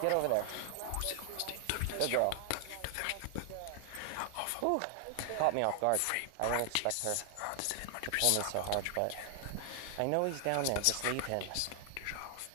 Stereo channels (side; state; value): both; different; correlation 0.00